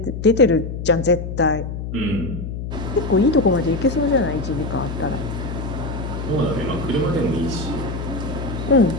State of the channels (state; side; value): noise; left; hum, 6 dB below the sound